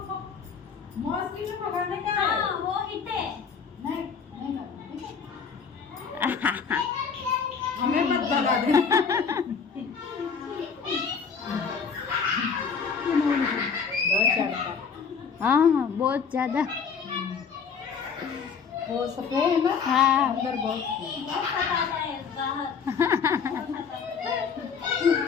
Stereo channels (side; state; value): right; quieter; 6.1 dB